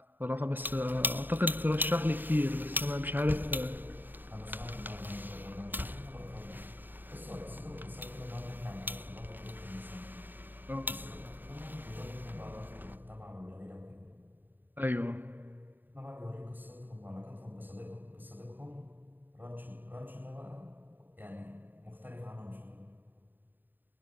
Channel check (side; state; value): left; late; 0.091 ms